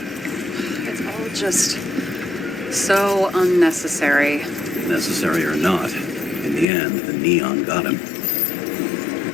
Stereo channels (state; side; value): drops out; right; at 6.7 s